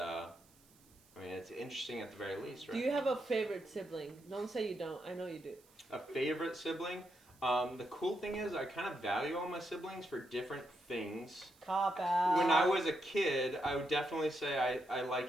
it's interesting at the very least, right? Do you have a favorite sibling? Don't say you don't. I know you do. A favorite sibling? The cool thing is I kind of value all my siblings for different things. Cop out. When I was a kid, I would definitely say I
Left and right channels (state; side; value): noise; right; hiss, 29 dB below the sound